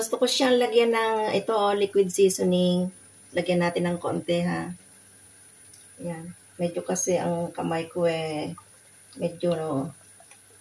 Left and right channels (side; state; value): both; identical; correlation 1.00